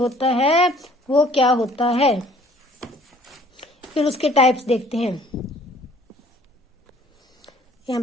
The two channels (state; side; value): normal; both; correlation 0.55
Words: है वो क्या होता है, फिर उसके टाइप्स देखते हैं। यहां